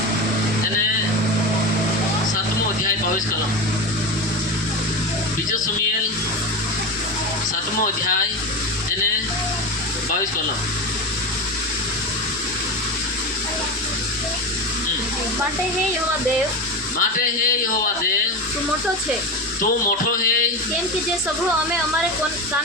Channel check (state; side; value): noise; right; hum, 23 dB below the sound